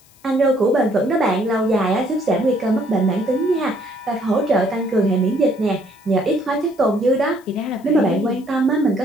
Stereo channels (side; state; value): left; noise; hiss, 29 dB below the sound